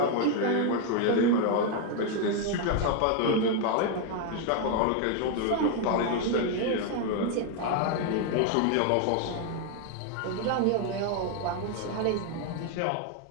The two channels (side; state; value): both; different; correlation 0.01